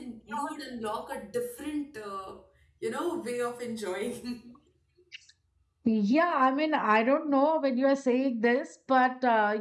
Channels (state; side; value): identical; both; correlation 1.00